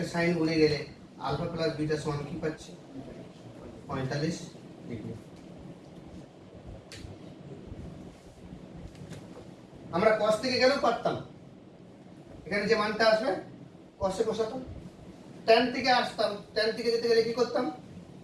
সাইন গুণে গেলে আলফা প্লাস বিটা সমান কি পাচ্ছি? 45 ডিগ্রি। আমরা cos থেকে গেলেও পারতাম, এখানে যে মানটা আসবে cos এ বসাতাম। tan থেকে আসতাম, tan থেকে যেতে গেলে কি করতাম?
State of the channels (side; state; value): both; identical; correlation 1.00